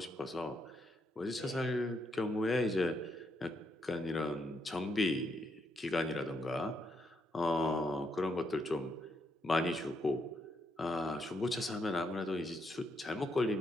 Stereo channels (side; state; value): both; normal; correlation 0.77